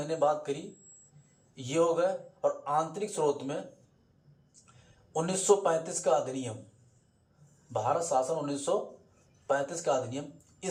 बात करी ये हो गए, और आंतरिक स्रोत में 1935 का अधिनियम, भारत शासन 1935 का अधिनियम,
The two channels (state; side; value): identical; both; correlation 1.00